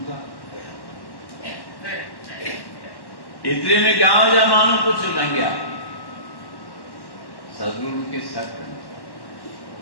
था। एतिरे में गांव जा माण्हू कुझु लंघिया, सदगुरु खे सक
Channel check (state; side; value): late; right; 1.1 ms